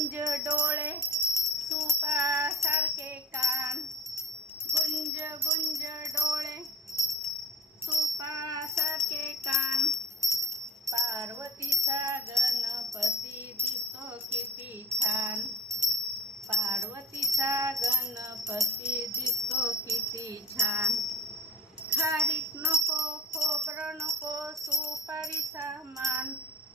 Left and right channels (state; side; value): normal; both; correlation 0.36